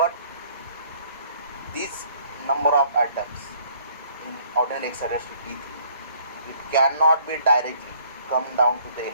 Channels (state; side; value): inverted; both; correlation -0.61